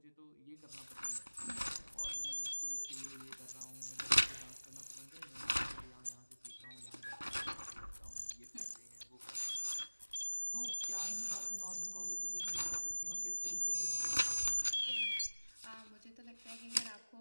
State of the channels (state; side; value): inverted; both; correlation -1.00